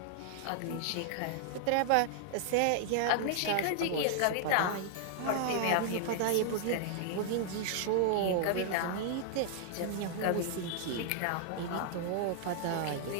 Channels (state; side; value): different; both; correlation -0.01